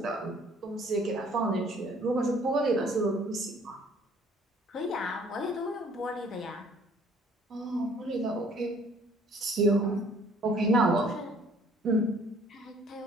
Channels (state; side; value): normal; both; correlation 0.57